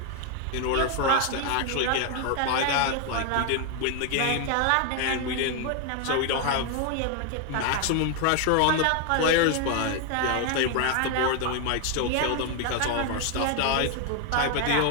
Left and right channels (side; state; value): both; different; correlation 0.01